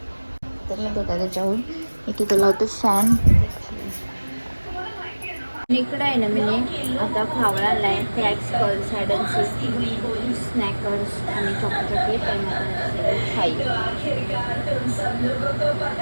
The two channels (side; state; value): both; inverted; correlation -1.00